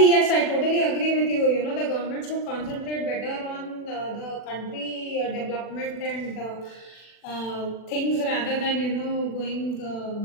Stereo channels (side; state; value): right; late; 40 ms